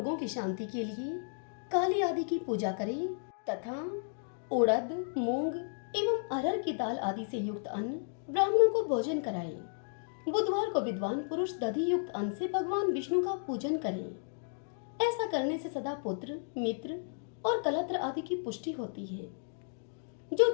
की शांति के लिए काली आदि की पूजा करें तथा उड़द, मूंग एवं अरहर की दाल आदि से युक्त अन्न ब्राह्मणों को भोजन कराएं। बुधवार को विद्वान पुरुष दधि युक्त अन्न से भगवान विष्णु का पूजन करें। ऐसा करने से सदा पुत्र, मित्र और कलत्र आदि की पुष्टि होती है। जो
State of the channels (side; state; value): right; silent; digital silence